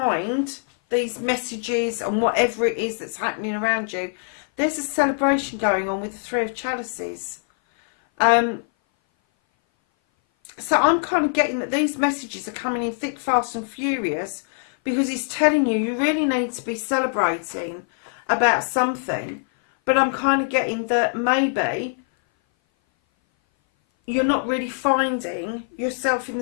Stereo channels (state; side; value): silent; right; 58 dB below the other